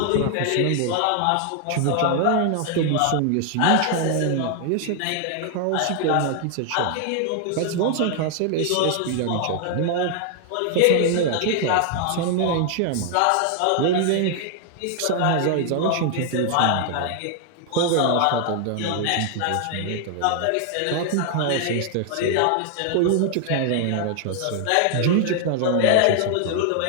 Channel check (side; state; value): both; different; correlation 0.00